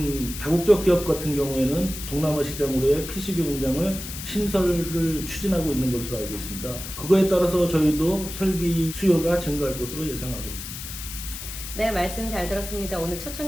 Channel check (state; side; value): noise; left; hiss, 9 dB below the sound